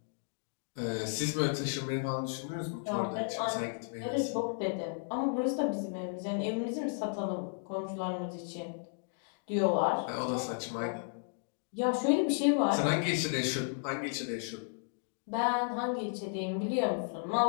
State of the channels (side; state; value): right; silent; digital silence